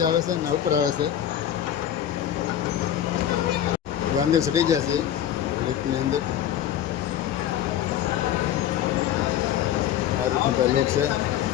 આવે છે ને ઉપર આવે છે. અંદર ચડી જાય છે લિફ્ટની અંદર. આ રીતનું ભાઈ લોક છે.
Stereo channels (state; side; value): quieter; right; 10.8 dB